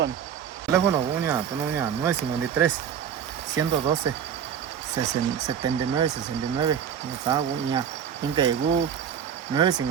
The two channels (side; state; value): left; quieter; 8.4 dB